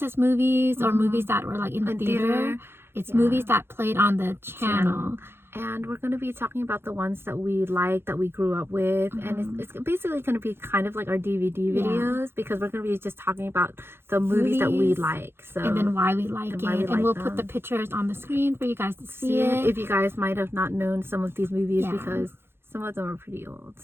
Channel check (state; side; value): late; left; 0.11 ms